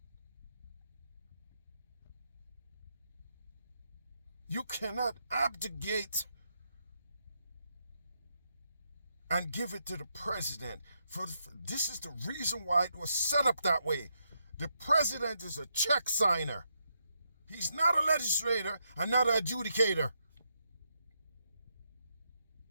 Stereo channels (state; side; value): inverted; both; correlation -0.81